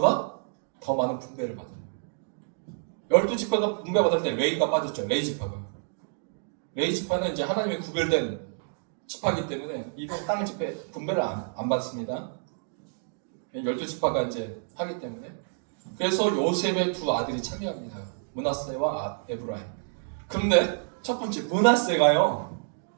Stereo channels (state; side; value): silent; left; digital silence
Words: 더 많은 분배를 받아요. 12지파가 분배받을 때 레이가 빠졌죠. 레이 지파는 이제 하나님의 구별된 지파이기 때문에 이번 땅 집회 분배를 안 받습니다. 12지파가 이제 하기 때문에. 그래서 요셉의 두 아들이 참여합니다. 므낫세와 에브라임. 그런데 첫 번째 므낫세가요